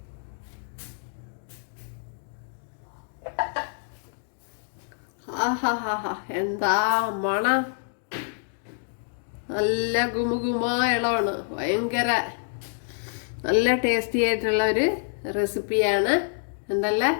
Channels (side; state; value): right; silent; digital silence